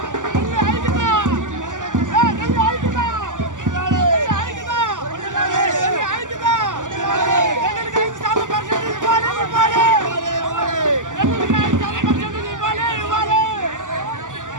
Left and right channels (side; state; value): left; late; 0.87 ms